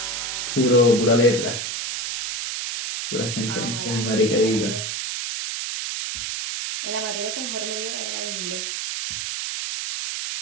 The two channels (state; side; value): noise; right; hiss, 3 dB below the sound